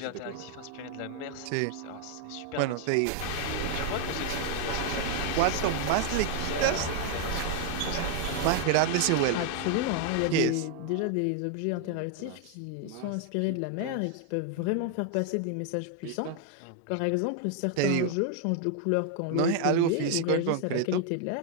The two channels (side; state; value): both; different; correlation 0.00